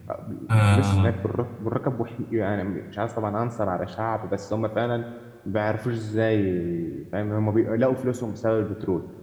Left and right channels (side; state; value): both; identical; correlation 1.00